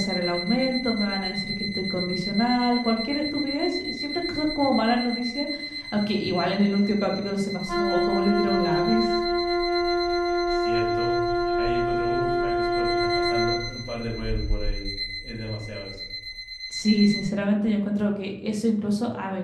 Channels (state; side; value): identical; both; correlation 1.00